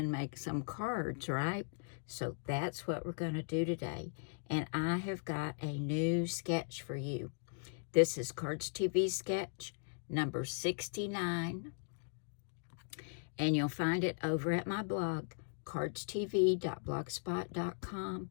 make some cards, right? So that's what we're going to do today. And I have got a new sketch for you. This is Cardz TV Sketch number 69. And you'll find it over at my blog, cardztv.blogspot.com.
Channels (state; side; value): silent; right; digital silence